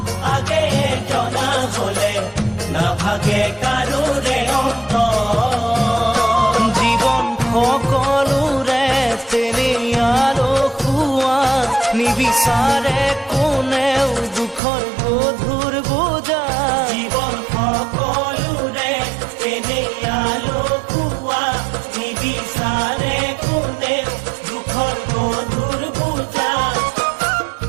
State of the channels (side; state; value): left; drops out; at 14.6 s